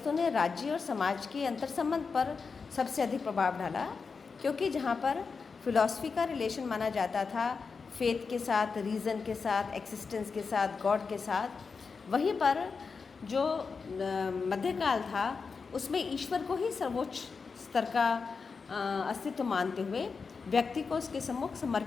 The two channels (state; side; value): quieter; right; 5.0 dB